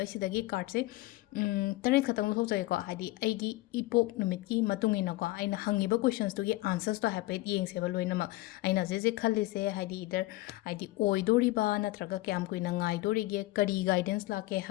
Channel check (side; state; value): right; quieter; 19.2 dB